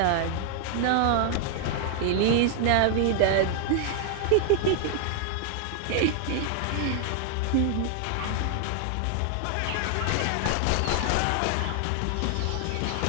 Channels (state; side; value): different; both; correlation 0.00